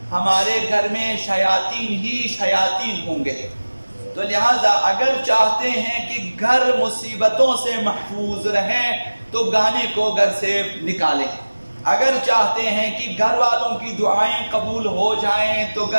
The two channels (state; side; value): inverted; both; correlation -1.00